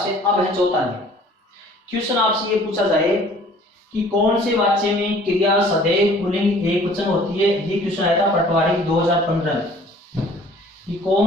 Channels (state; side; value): normal; both; correlation 0.52